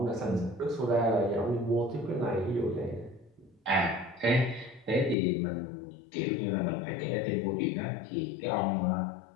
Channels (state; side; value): drops out; right; at 5.2 s